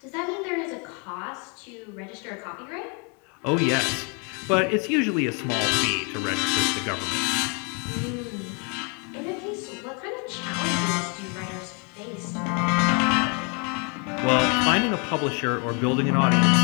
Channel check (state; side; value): quieter; right; 35.1 dB